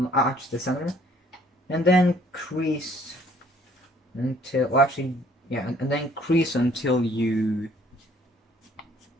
arch the center, and then crease until, well, actually, yeah, and then crease until you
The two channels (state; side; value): normal; both; correlation 0.60